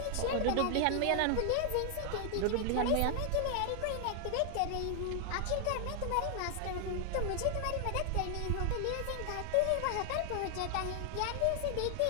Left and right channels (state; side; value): different; both; correlation 0.00